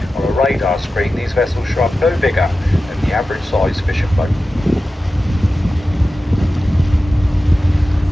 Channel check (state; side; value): normal; both; correlation 0.94